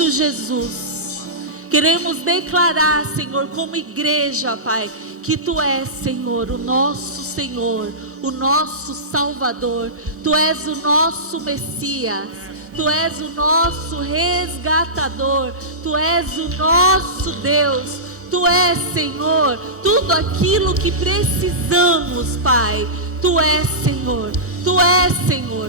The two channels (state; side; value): normal; both; correlation -0.18